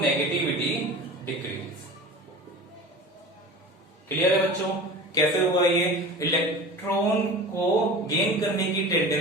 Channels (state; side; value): normal; both; correlation 0.35